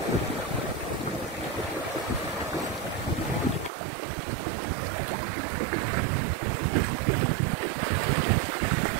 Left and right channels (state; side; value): drops out; left; at 3.7 s